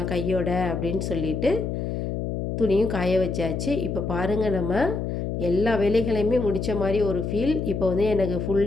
கையோட அப்படின்னு சொல்லிட்டு துணியும் காய வச்சாச்சு. இப்போ பாருங்கள், நம்ம எல்லா வேலைகளையுமே முடித்த மாதிரி ஒரு ஃபீல். இப்போ வந்து எனக்கு ஃபுல்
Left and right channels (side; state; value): left; noise; hum, 3 dB below the sound